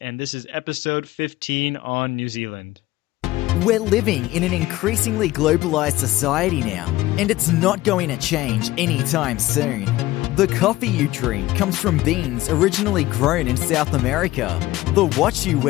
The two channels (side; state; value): right; quieter; 17.2 dB